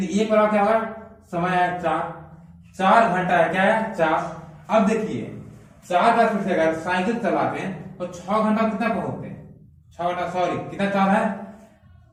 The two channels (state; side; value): identical; both; correlation 1.00